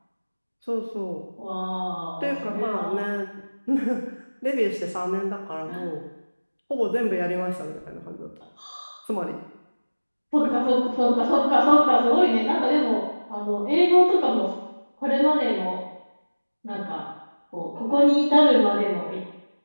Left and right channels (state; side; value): inverted; both; correlation -1.00